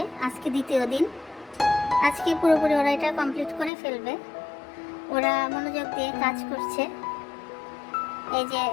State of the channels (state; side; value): drops out; right; at 3.7 s